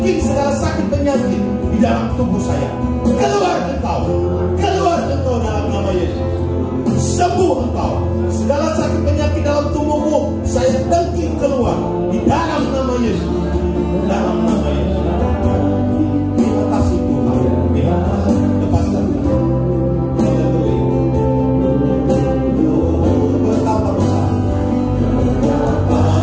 dengking segala sakit penyakit di dalam tubuh saya. Keluar engkau dalam nama Yesus. Sembuh engkau. Segala sakit penyakit dalam tubuhmu saya dengking keluar di dalam nama Yesus. Dalam nama Yesus. Terima kasih Tuhan. Lepaskan.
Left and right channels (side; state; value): both; identical; correlation 1.00